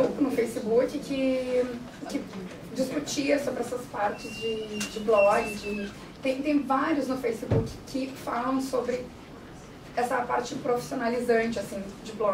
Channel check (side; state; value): both; identical; correlation 1.00